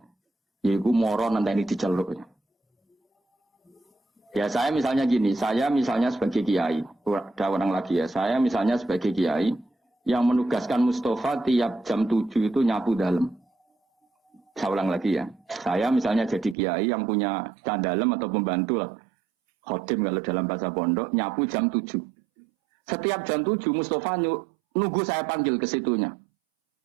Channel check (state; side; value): drops out; left; at 16.6 s